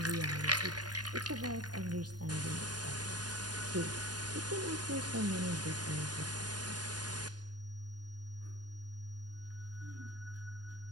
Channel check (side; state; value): left; late; 0.69 ms